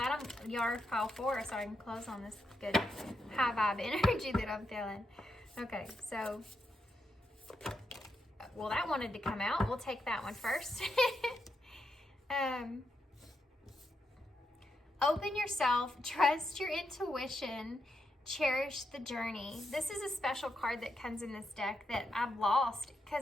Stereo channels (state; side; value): normal; both; correlation 0.83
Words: you're pile 4, so I can close on this good high vibe energy that I'm feeling. Okay, so, well, that wanted to come out. We'll take that one first. Open yourself, trust your intuition, cherish the journey. This is a special card that comes in this deck that I've lost